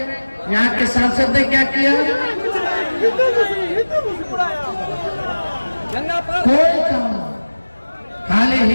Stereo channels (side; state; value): both; inverted; correlation -1.00